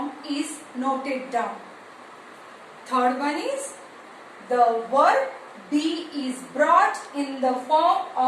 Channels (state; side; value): identical; both; correlation 1.00